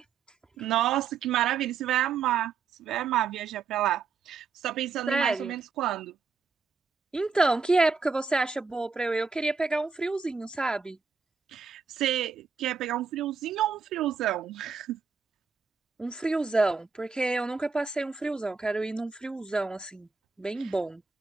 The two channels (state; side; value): quieter; left; 5.2 dB